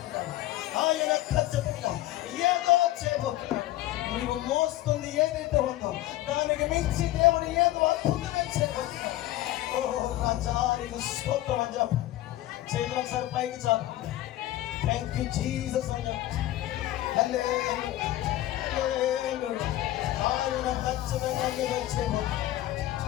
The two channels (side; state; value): right; quieter; 15.3 dB